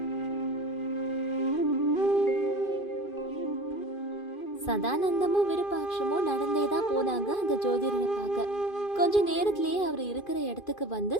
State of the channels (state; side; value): late; right; 2.5 ms